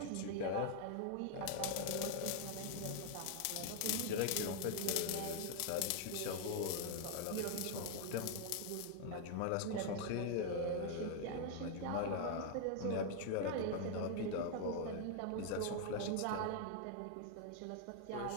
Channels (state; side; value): different; both; correlation 0.00